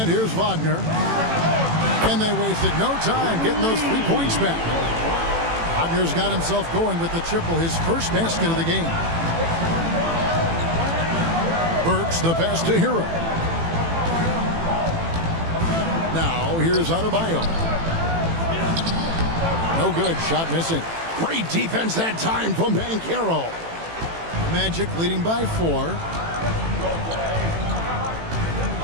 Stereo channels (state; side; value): late; left; 18 ms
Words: here's Wagner. And they wasted no time getting those 3 points back. Wagner's got himself going with the triple, his first basket of the game. Burks the pass to Hero. Now here's Adebayo. No good, shot missing. Great defense that time from Banchero. Magic leading by 4.